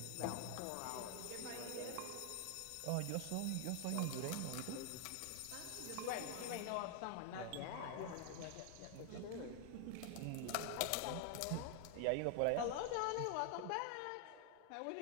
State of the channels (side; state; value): both; different; correlation 0.00